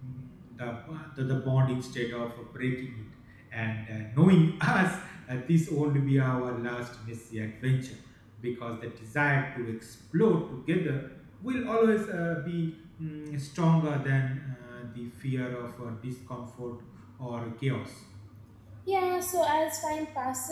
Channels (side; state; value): both; identical; correlation 1.00